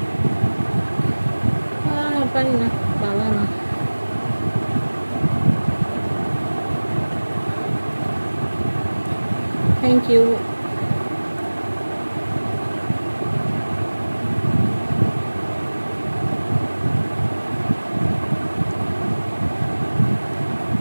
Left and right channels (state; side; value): inverted; both; correlation -1.00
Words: পারি না, ভালো না। Thank you.